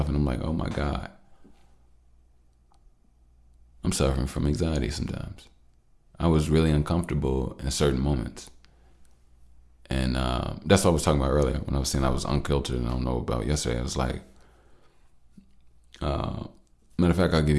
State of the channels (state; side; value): identical; both; correlation 1.00